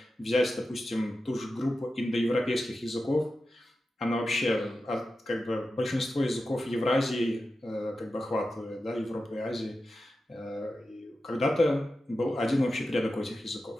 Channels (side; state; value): both; normal; correlation 0.92